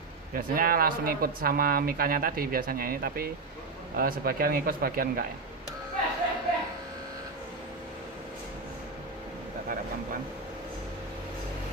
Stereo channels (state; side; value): quieter; left; 3.9 dB